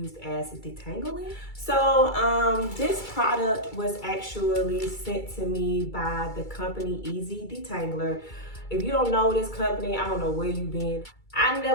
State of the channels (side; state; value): right; late; 2.3 ms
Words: as detangling. So this product was actually sent to me by the company Easy Detangler. If you don't know this company, I don't know where you've been. I